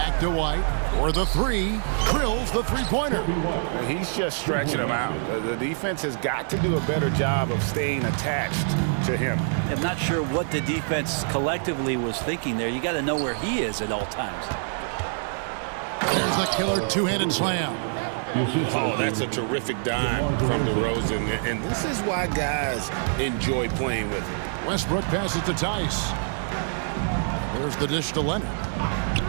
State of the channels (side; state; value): left; silent; 57 dB below the other